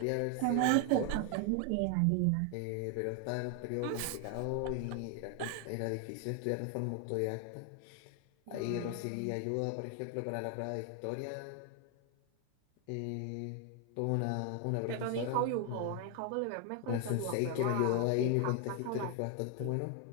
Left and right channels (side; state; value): both; different; correlation 0.01